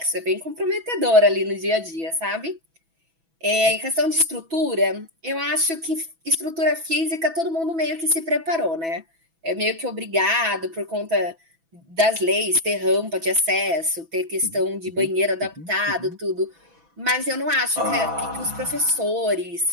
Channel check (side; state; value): left; late; 6.1 ms